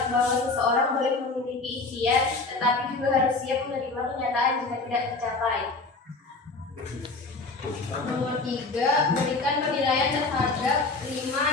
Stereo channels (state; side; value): quieter; right; 3.6 dB